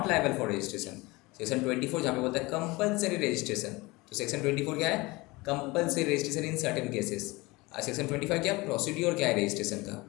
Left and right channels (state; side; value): quieter; right; 22.8 dB